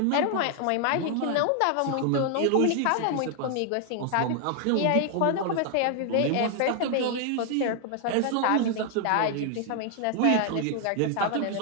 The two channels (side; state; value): both; different; correlation 0.00